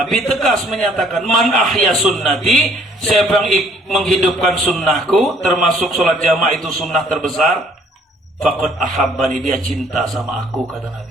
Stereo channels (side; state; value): both; normal; correlation 0.61